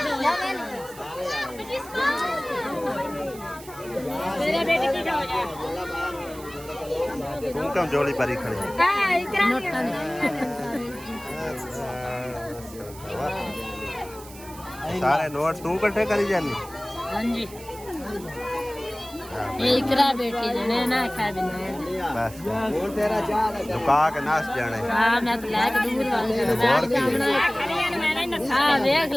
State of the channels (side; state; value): right; noise; hiss, 18 dB below the sound